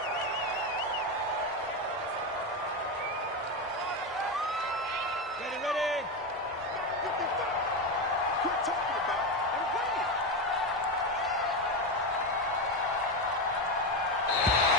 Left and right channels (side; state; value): both; normal; correlation 0.13